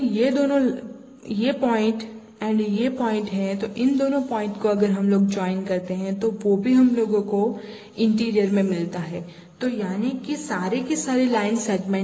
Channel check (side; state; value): both; identical; correlation 1.00